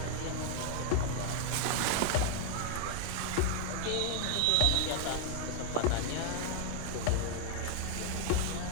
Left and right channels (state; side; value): different; both; correlation 0.00